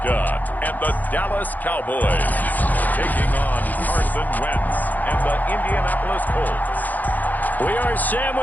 and the Dallas Cowboys taking on Carson Wentz and the Indianapolis Colts. We are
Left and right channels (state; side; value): late; right; 0.083 ms